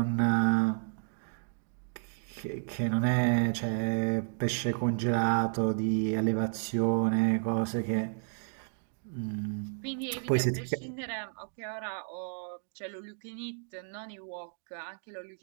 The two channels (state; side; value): silent; left; digital silence